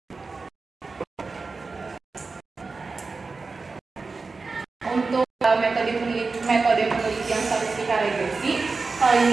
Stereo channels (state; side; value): quieter; left; 4.1 dB